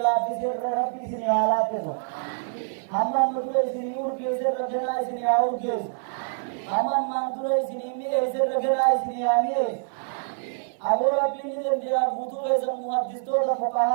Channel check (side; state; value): left; silent; 61 dB below the other